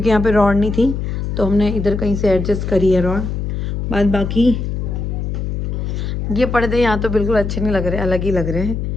यहाँ पे रॉड नहीं थी तो हमने इधर कहीं से एडजस्ट करी है रॉड। बाद बाकी ये पर्दे यहाँ तो बिल्कुल अच्छे नहीं लग रहे, अलग ही लग रहे हैं,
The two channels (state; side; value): noise; left; hum, 3 dB below the sound